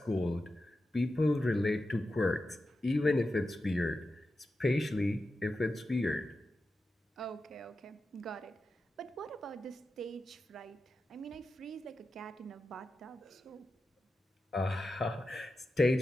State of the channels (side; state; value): both; normal; correlation 0.91